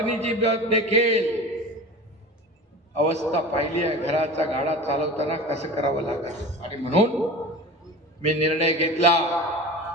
देखील अवस्था पाहिली आहे. घराचा गाडा चालवताना कसं करावं लागत. आणि म्हणून मी निर्णय घेतला,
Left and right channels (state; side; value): normal; both; correlation 0.33